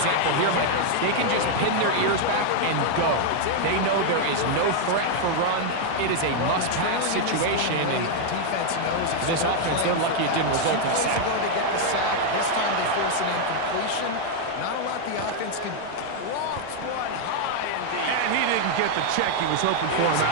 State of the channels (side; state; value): both; different; correlation 0.00